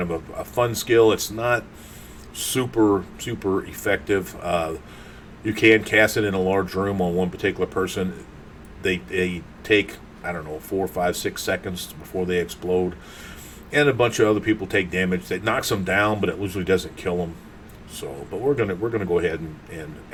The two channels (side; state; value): both; identical; correlation 1.00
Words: of a fun skill. It's not super effective. You can cast it in a large room on one particular person. They take, I don't know, 4, 5, 6 seconds before they explode, and a bunch of other people take damage. That knocks them down, but it usually doesn't kill them. So, but we're gonna go ahead and